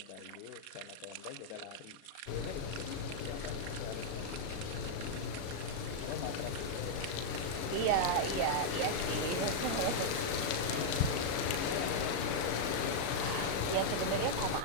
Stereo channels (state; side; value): late; right; 37 ms